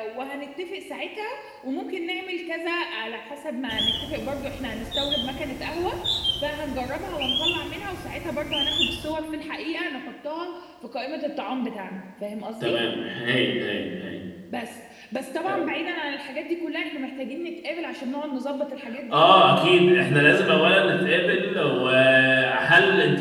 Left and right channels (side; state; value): both; identical; correlation 1.00